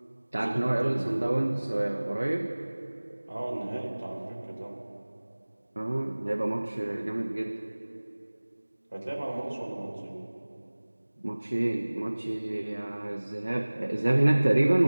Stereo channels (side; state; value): both; inverted; correlation -1.00